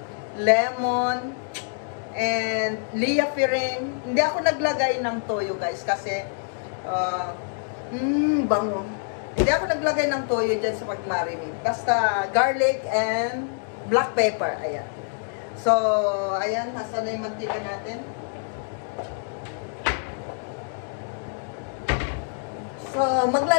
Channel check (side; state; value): right; silent; 61 dB below the other